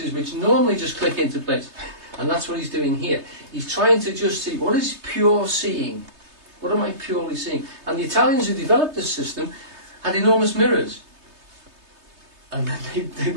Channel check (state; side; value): late; left; 3.3 ms